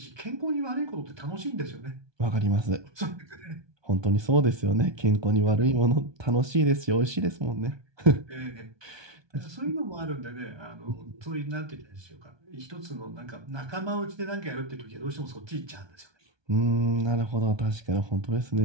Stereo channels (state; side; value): late; left; 1.2 ms